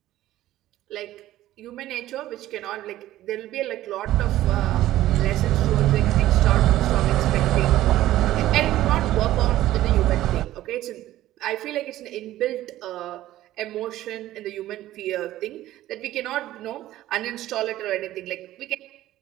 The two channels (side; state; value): left; quieter; 14.5 dB